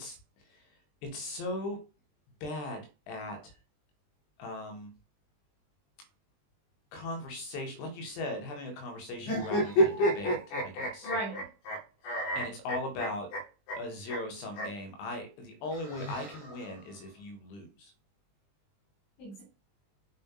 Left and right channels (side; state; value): right; late; 20 ms